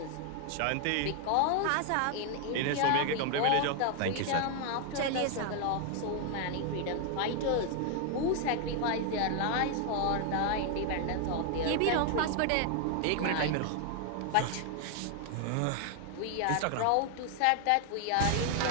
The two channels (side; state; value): both; different; correlation 0.00